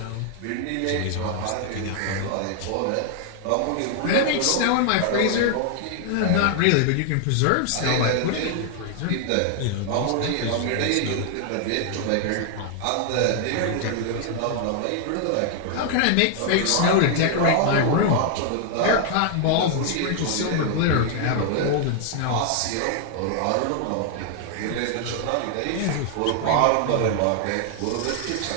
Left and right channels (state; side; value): different; both; correlation 0.00